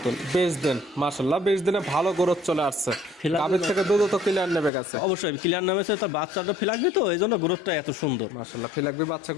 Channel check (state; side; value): drops out; right; at 4.7 s